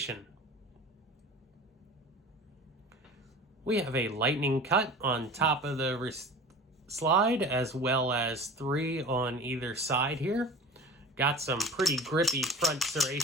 We have a lightning cut on top of the slide, as well as 3 on either side here. Got some pretty grippy front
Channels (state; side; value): normal; both; correlation 0.36